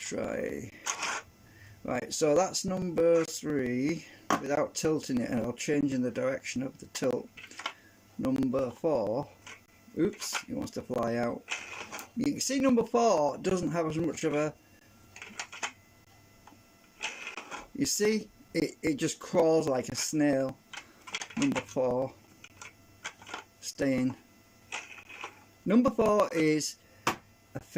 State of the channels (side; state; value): both; identical; correlation 1.00